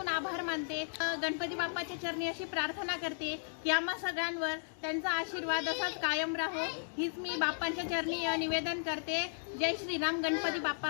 आभार मानते. गणपती बाप्पाच्या चरणी अशी प्रार्थना करते की आम्हा सगळ्यांवर त्यांचा आशीर्वाद असाच कायम राहो, हीच मी बाप्पांच्या चरणी निवेदन करते. जय श्रीराम, गणपती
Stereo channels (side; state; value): right; silent; digital silence